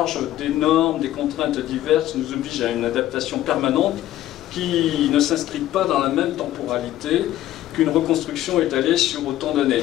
des normes, des contraintes diverses nous oblige à une adaptation permanente qui ne s'inscrit pas dans la même temporalité qu'une reconstruction étalée sur autant d'années,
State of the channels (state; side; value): quieter; right; 13.7 dB